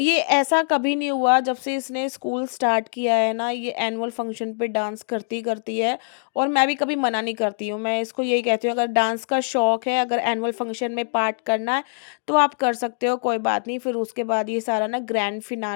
ऐसा कभी नहीं हुआ जब से इसने स्कूल स्टार्ट किया है ना, ये एनुअल फंक्शन पे डांस करती करती है। और मैं भी कभी मना नहीं करती हूँ, मैं इसको यही कहती हूँ, अगर डांस का शौक है, अगर एनुअल फंक्शन में पार्ट करना है तो आप कर सकते हो, कोई बात नहीं। फिर उसके बाद ये सारा ना ग्रैंड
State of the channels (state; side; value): silent; right; digital silence